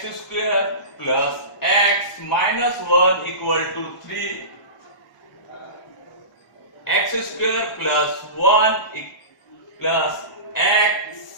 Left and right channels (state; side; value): late; right; 1.0 ms